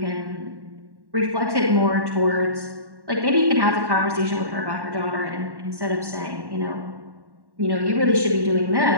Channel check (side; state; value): left; late; 1.1 ms